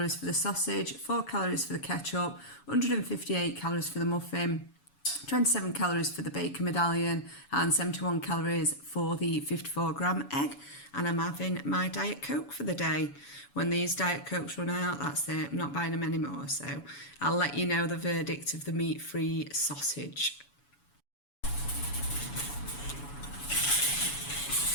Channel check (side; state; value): right; late; 7.1 ms